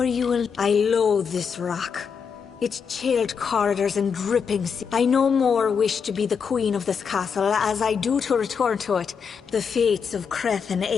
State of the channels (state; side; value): quieter; right; 6.3 dB